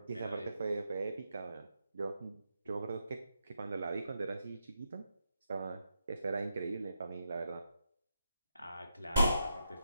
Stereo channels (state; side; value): inverted; both; correlation -0.83